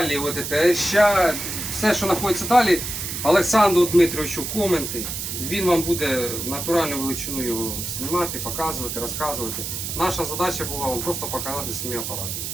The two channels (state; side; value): noise; right; hiss, 5 dB below the sound